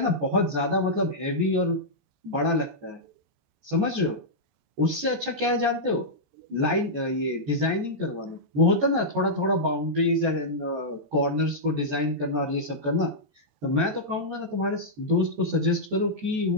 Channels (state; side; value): late; left; 14 ms